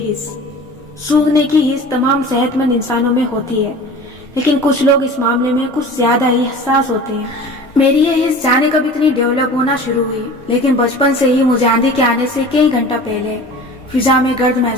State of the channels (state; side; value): normal; both; correlation 0.39